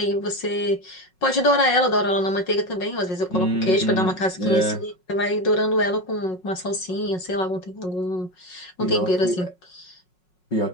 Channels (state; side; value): late; right; 5.4 ms